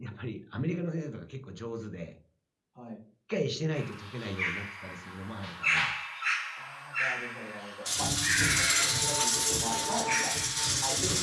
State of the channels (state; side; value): identical; both; correlation 1.00